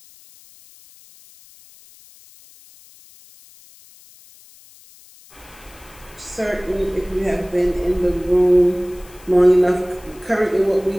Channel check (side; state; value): left; noise; hiss, 25 dB below the sound